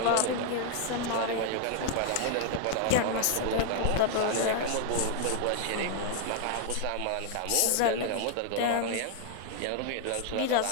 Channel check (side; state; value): both; different; correlation 0.00